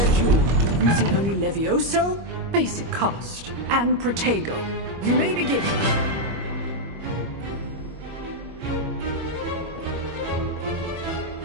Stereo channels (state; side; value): late; left; 25 ms